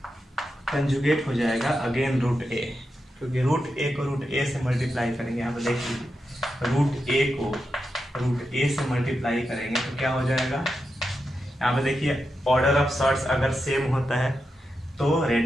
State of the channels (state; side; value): normal; both; correlation 0.88